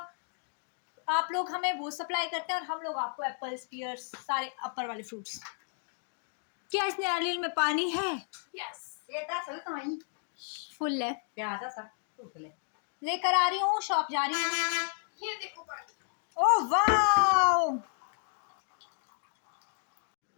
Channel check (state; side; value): silent; right; 55 dB below the other